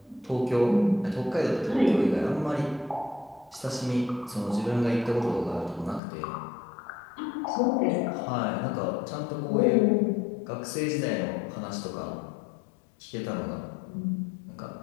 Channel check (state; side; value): drops out; right; at 6.0 s